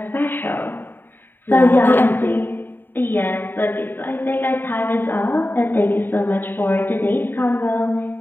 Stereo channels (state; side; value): late; right; 0.095 ms